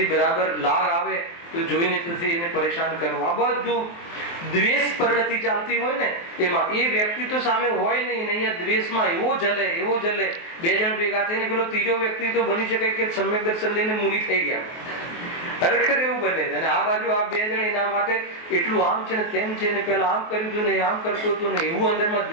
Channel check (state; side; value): late; right; 23 ms